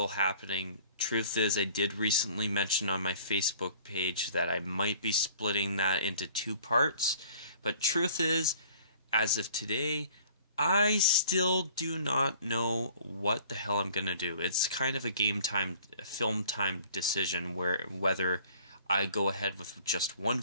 happening. Truth is, I did recently mention on my Facebook page that I might be splitting that into 2 parts. But truth is, as of today, I still do not know what the hell I'm going to do. It's kind of a film time decision whether I go ahead with just 1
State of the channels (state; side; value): inverted; both; correlation -0.52